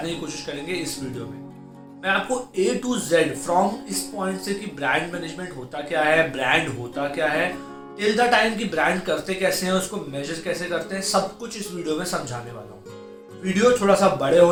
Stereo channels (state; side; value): identical; both; correlation 1.00